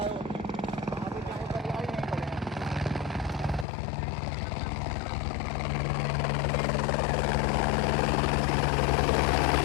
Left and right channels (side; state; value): right; drops out; at 3.7 s